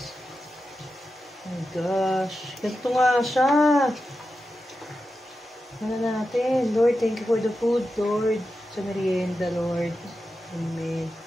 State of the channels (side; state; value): both; normal; correlation 0.90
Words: Oh my gosh. Ganito nga siya. Ano natin? Lord, thank you for the food, Lord. Sa merienda, Lord. Amen.